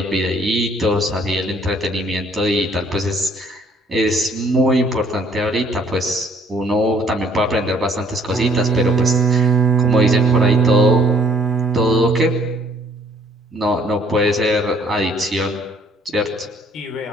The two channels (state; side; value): normal; both; correlation 0.60